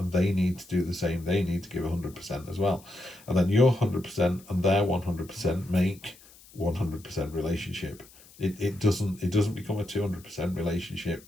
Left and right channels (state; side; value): noise; left; hiss, 24 dB below the sound